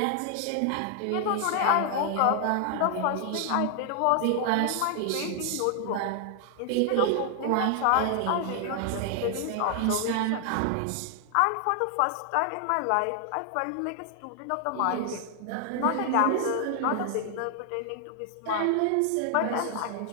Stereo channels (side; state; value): both; different; correlation 0.00